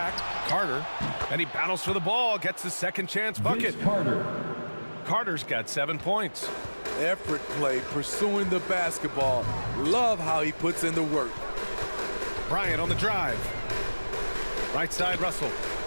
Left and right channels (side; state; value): both; inverted; correlation -1.00